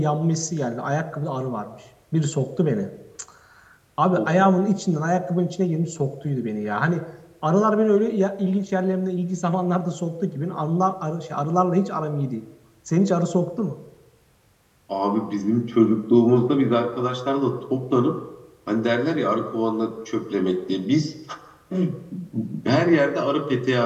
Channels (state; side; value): identical; both; correlation 1.00